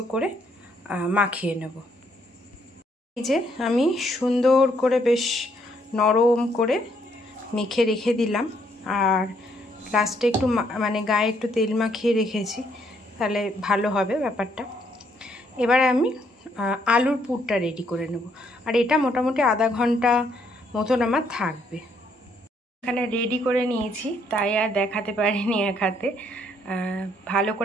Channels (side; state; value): both; normal; correlation 0.70